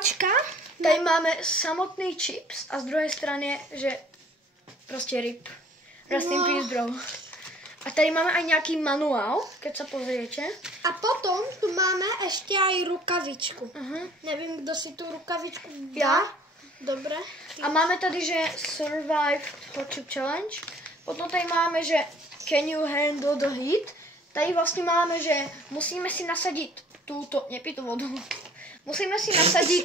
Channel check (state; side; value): normal; both; correlation 0.54